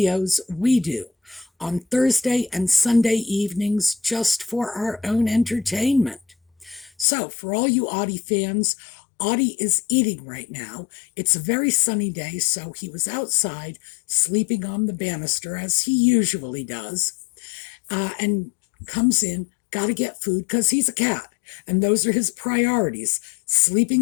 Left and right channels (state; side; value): drops out; right; at 7.1 s